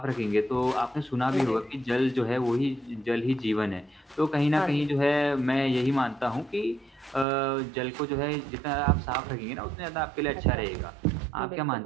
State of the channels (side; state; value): left; drops out; at 7.2 s